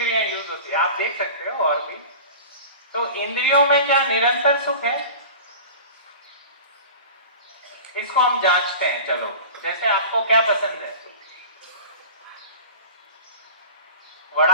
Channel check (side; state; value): both; inverted; correlation -0.36